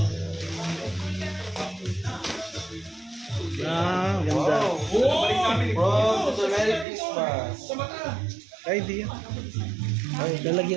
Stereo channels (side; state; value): left; drops out; at 6.9 s